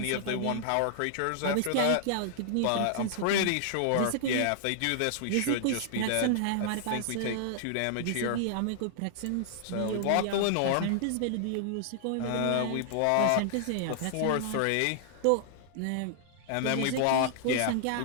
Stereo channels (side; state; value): both; different; correlation -0.01